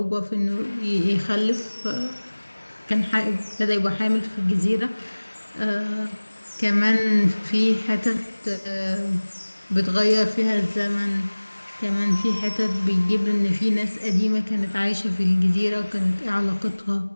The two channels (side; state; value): both; inverted; correlation -1.00